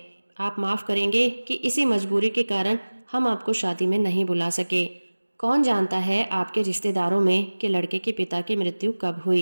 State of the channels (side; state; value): both; inverted; correlation -1.00